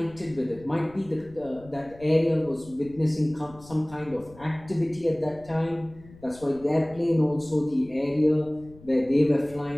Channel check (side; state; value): left; noise; rumble, 22 dB below the sound